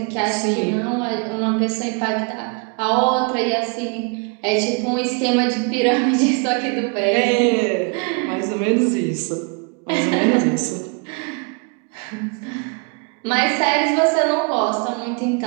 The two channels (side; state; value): left; quieter; 33.6 dB